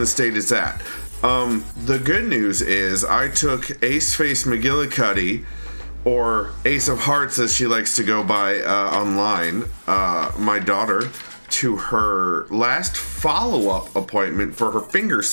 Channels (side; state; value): both; inverted; correlation -1.00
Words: state it's at. The good news is I took Ace Face McGillicuddy, or Ace of Hearts as she likes to go by online, my daughter, to her last follow-up appointment for her finger